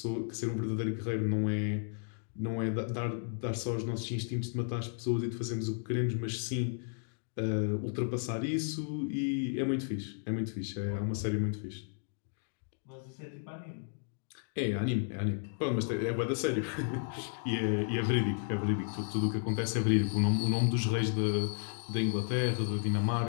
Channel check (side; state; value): right; silent; digital silence